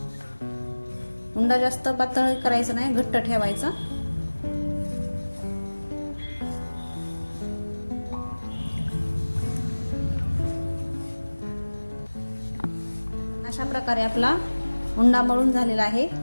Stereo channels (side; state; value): both; inverted; correlation -1.00